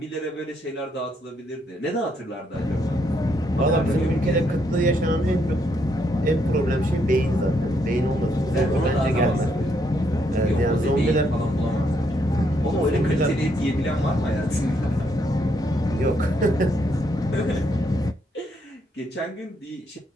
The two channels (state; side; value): normal; both; correlation 0.75